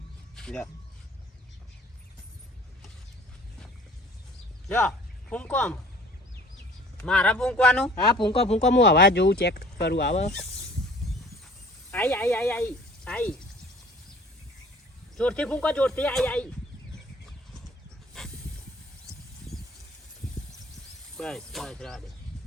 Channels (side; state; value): both; normal; correlation 0.50